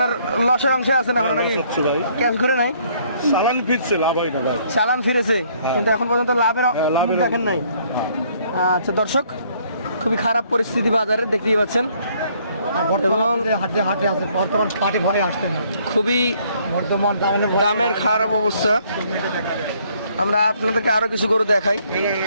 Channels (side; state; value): both; inverted; correlation -0.64